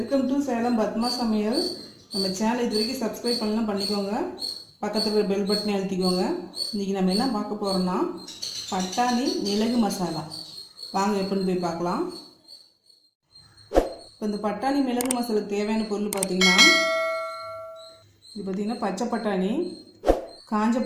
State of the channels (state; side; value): identical; both; correlation 1.00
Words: to Salem Padma சமையல். நம்ம channel இது வரைக்கும் சப்ஸ்கிரைப் பண்ணலாம் பண்ணிக்கோங்க. பக்கத்தில் இருக்கிற பெல் பட்டனை அழுத்திக்கோங்க. இன்றைக்கி நம்ம என்ன பார்க்க போகிறோம்னா பட்டாணி மிளகு மசாலா. வாங்க எப்படின்னு போய் பார்க்கலாம். இப்போ இந்த பட்டாணி மிளகு மசாலாவுக்கு தேவையான பொருள் பார்த்திங்கன்னா, இது பார்த்திங்கன்னா பச்சை பட்டாணி, காஞ்ச